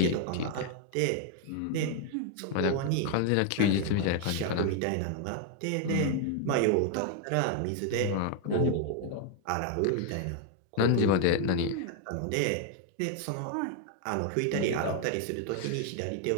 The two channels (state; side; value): different; both; correlation 0.00